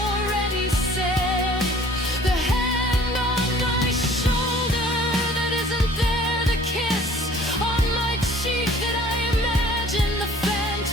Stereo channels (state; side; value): normal; both; correlation 0.52